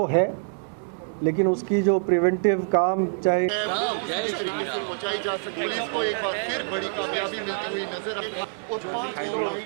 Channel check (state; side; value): silent; left; digital silence